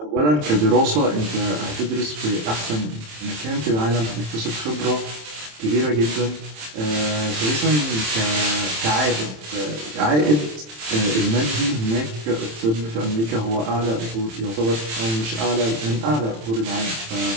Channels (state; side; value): late; left; 27 ms